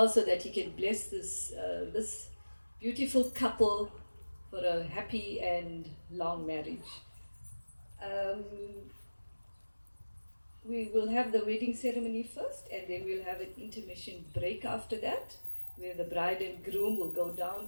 so that he can bless this beautiful couple for a happy and long marriage. We will have the wedding ceremony first, and then we'll have an intermission break after that, where the bride and groom will go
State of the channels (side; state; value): both; inverted; correlation -1.00